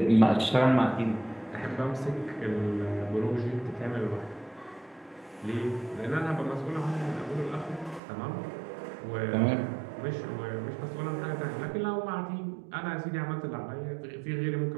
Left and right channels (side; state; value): left; drops out; at 8.0 s